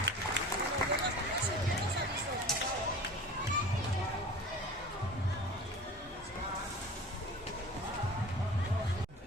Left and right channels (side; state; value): both; normal; correlation 0.39